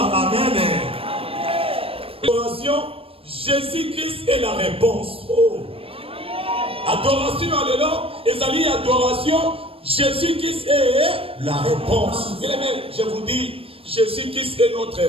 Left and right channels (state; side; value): late; left; 0.27 ms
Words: Amen. Adoration. Jésus-Christ est la réponse. Oh. Adoration, alléluia. Et adoration, Jésus-Christ est la réponse. Bien aimé, je vous dis, Jésus-Christ est notre